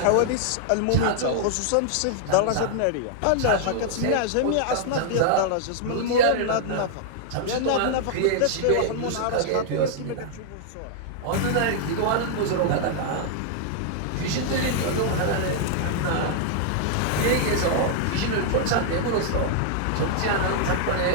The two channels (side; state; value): both; different; correlation -0.01